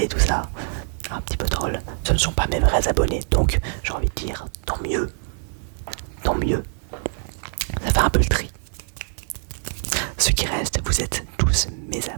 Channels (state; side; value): silent; left; digital silence